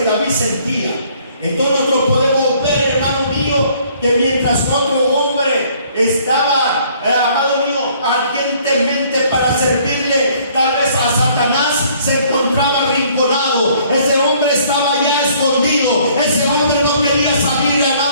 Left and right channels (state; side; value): inverted; both; correlation -0.60